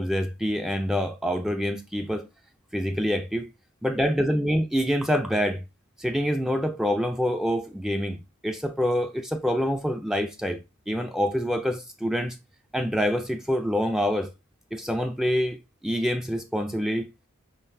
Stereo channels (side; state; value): both; normal; correlation 0.88